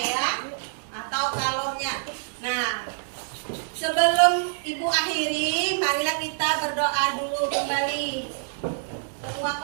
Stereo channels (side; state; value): left; silent; digital silence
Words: ya, atau kalornya. Nah, sebelum Ibu akhiri, marilah kita berdoa dulu kembali. Ketua